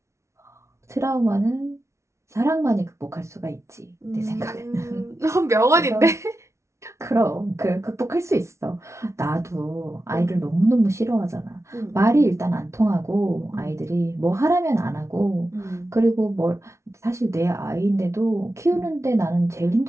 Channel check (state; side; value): late; left; 0.13 ms